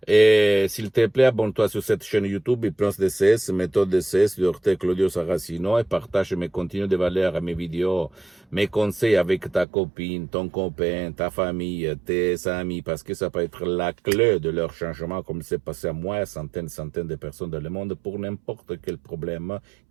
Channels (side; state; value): left; drops out; at 9.7 s